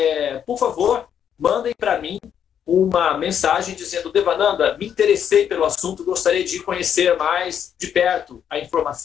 por favor, mandem para mim uma mensagem dizendo: Devananda, me interessei pelo assunto, gostaria de conhecer mais de perto a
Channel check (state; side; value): quieter; right; 8.7 dB